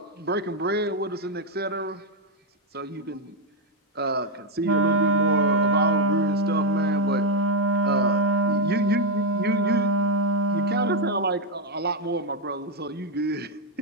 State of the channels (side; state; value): both; normal; correlation 0.02